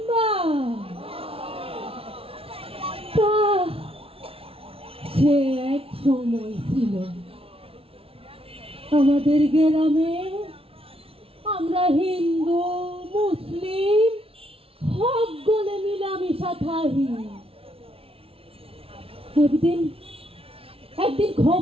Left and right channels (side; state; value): left; late; 0.27 ms